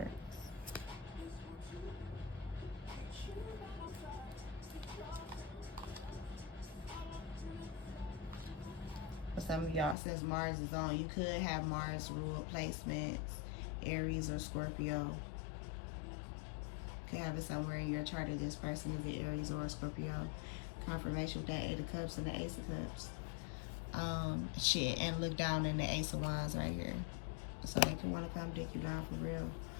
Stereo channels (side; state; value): right; drops out; at 10.0 s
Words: For some of y'all, since Mars is on, you could have Mars ruled placements, Aries or Scorpio. could have it somewhere in your chart of this person is the Aries or Scorpio. Confirmation with that 8 of Cups and the Ace of Cups. And look down in the Ace of Wands right here. So they could want to come dick you down for real.